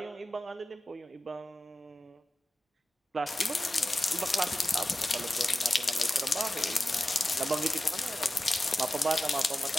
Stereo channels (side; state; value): both; normal; correlation 0.93